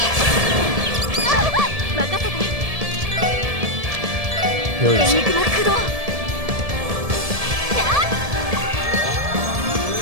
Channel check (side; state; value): left; late; 1.7 ms